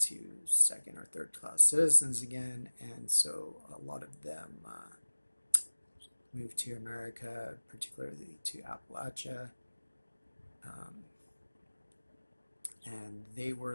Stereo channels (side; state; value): both; inverted; correlation -1.00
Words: second or third class citizens again. And so a lot of them moved to America, particularly to Appalachia. Um, and they